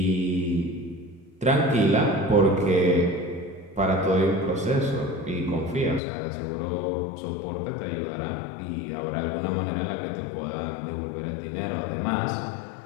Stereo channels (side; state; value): right; drops out; at 6.0 s